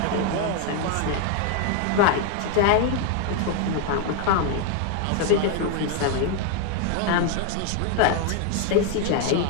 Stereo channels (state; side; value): different; both; correlation 0.00